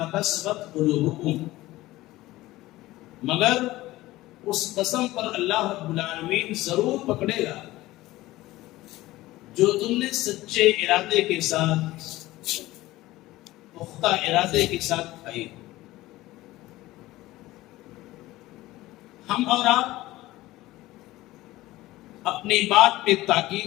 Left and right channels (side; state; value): right; quieter; 17.5 dB